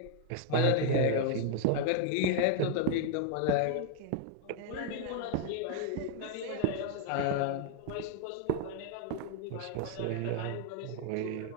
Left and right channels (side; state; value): both; different; correlation 0.00